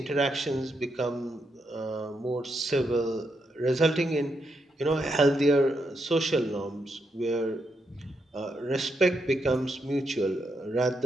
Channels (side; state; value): both; normal; correlation 0.81